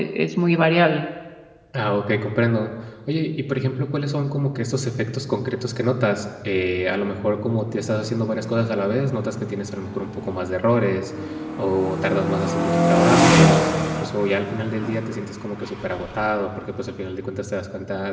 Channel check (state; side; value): identical; both; correlation 1.00